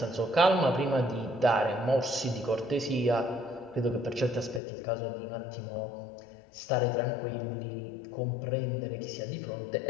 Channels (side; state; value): right; drops out; at 4.6 s